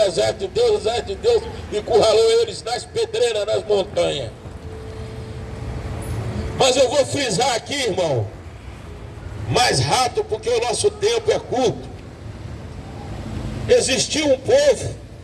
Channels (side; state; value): both; identical; correlation 1.00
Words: exército de Deus encurralou eles nas pedreiras, nas montanhas. Mas eu vou frisar aqui, irmão, mais rápido, porque o nosso tempo é curto. Existia um povo